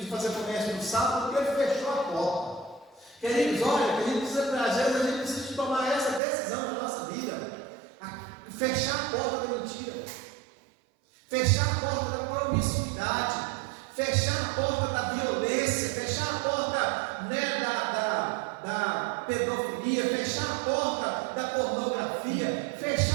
fazer comércio no sábado, porque ele fechou a porta. Queridos, olha, às vezes a gente precisa de tomar essa decisão na nossa vida. Fechar a porta da mentira, fechar a porta da promiscuidade, fechar a porta da violência, fechar a porta, né, da pedofilia, fechar a porta da pornografia,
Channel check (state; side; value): drops out; left; at 6.2 s